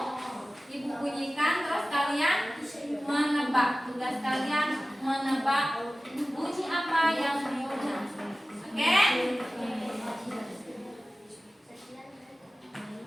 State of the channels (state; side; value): normal; both; correlation 0.97